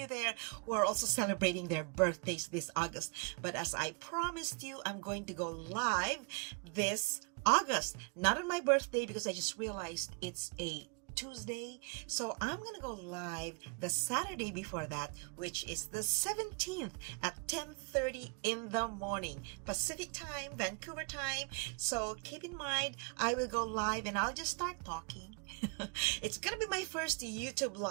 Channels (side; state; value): left; quieter; 35.7 dB